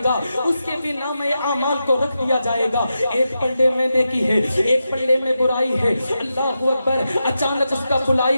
گا، اس کے بھی نام اعمال کو رکھ دیا جائے گا۔ ایک پلڑے میں نیکی ہے، ایک پلڑے میں برائی ہے، اللہ اکبر۔ اچانک اس کا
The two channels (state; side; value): inverted; both; correlation -0.88